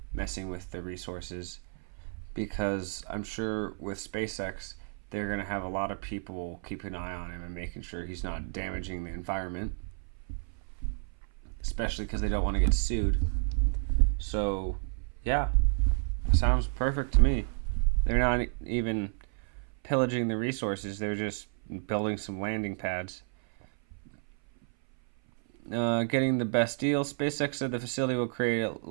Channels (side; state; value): left; silent; 56 dB below the other